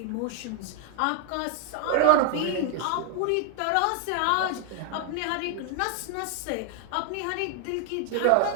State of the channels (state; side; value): different; both; correlation 0.00